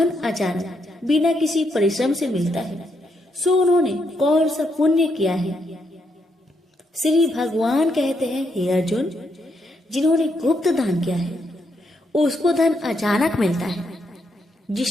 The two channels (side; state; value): both; normal; correlation 0.78